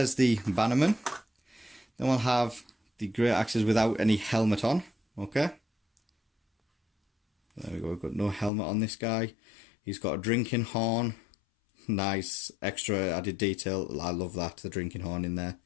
the bannerman. Then we'll have the Greataxes without any helmet on. Okay. There we go, we've got no helmet on this guy. He's got a drinking horn. Nice extra added detail. I love that, the drinking horn in there.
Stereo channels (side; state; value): right; drops out; at 8.5 s